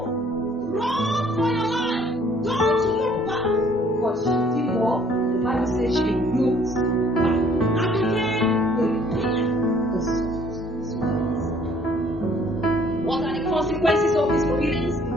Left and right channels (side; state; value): both; normal; correlation 0.60